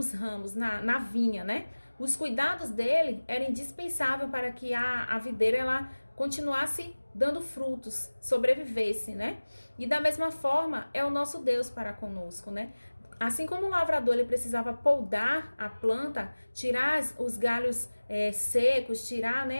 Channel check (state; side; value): inverted; both; correlation -1.00